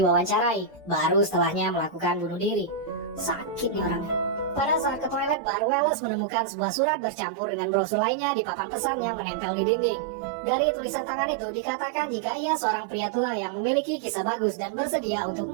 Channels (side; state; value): left; drops out; at 5.4 s